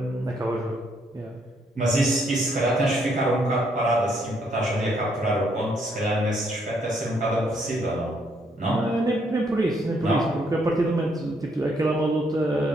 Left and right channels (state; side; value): normal; both; correlation 0.72